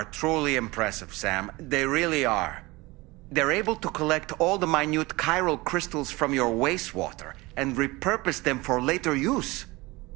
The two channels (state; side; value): quieter; left; 22.2 dB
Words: truly impressive, Sam. They really are. They're able to collect all the minute chiral crystals from your wastewater and repurpose them for later use.